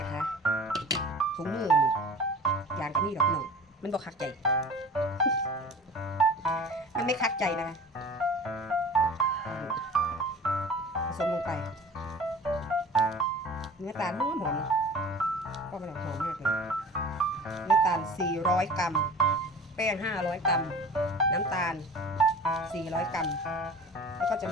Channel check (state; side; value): normal; both; correlation 0.40